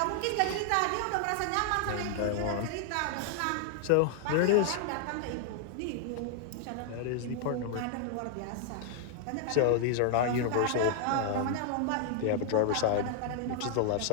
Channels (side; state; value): both; different; correlation 0.00